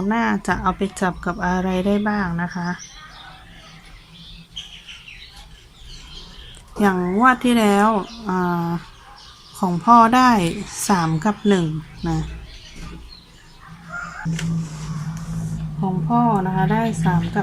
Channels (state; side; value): identical; both; correlation 1.00